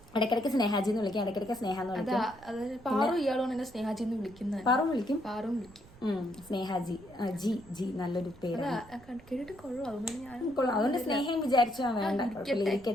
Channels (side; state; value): right; noise; rumble, 23 dB below the sound